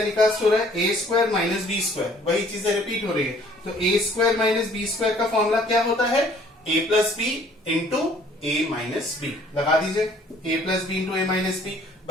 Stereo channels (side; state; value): both; normal; correlation 0.57